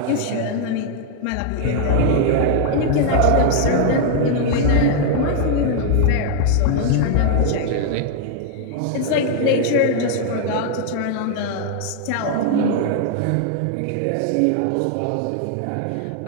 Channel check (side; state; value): both; different; correlation 0.00